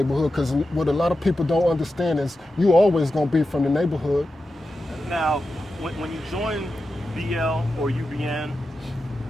because what a lot of people don't understand is you always gonna be from the neighborhood. Now, when you join BL or UBN,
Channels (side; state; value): both; normal; correlation 0.91